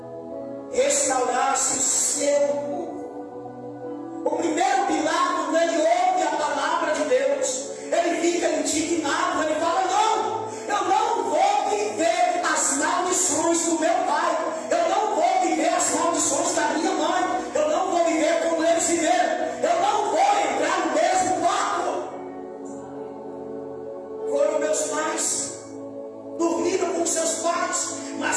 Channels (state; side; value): identical; both; correlation 1.00